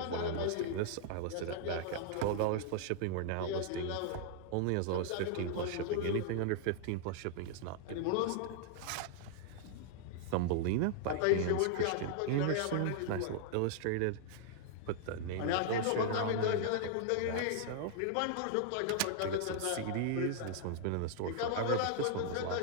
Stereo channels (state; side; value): different; both; correlation -0.01